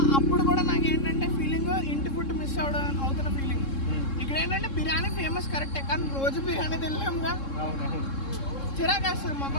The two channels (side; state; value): right; late; 3.7 ms